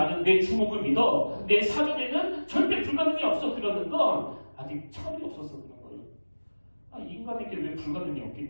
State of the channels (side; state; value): both; inverted; correlation -1.00